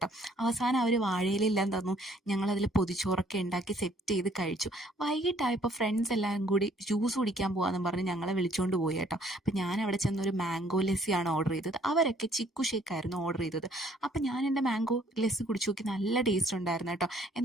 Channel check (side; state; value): both; normal; correlation 0.62